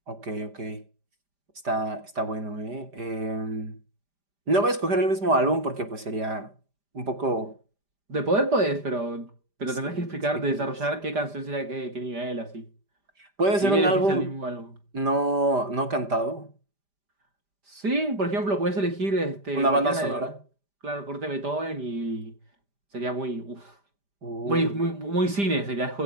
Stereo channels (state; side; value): late; left; 5.0 ms